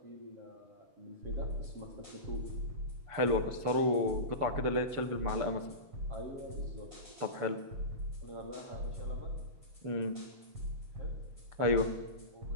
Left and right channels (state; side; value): late; left; 6.9 ms